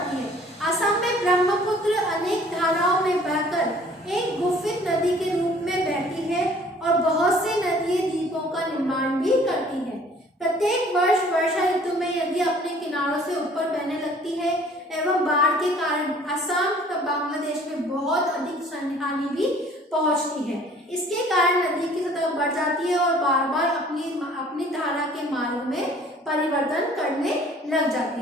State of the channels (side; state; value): both; normal; correlation 0.54